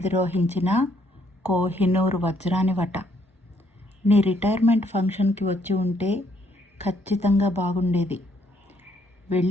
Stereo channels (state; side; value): normal; both; correlation 0.69